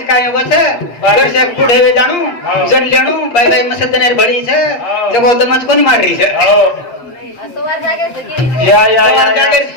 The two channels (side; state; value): right; late; 8.5 ms